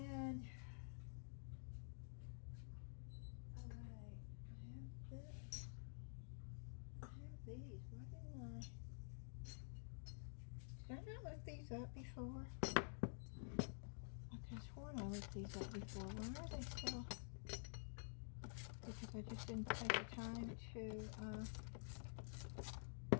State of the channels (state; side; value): silent; right; digital silence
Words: alright, I have this. I have these. Why didn't I? Did I not look these up before? I could have sworn I looked these up before. Why are they still? Because I just didn't take the time to,